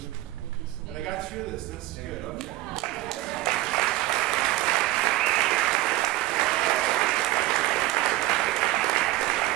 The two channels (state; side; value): quieter; left; 17.1 dB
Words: And I got through this. That's good. Okay.